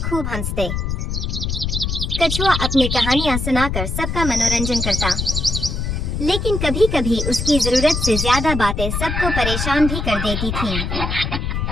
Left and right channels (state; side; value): noise; left; rumble, 2 dB below the sound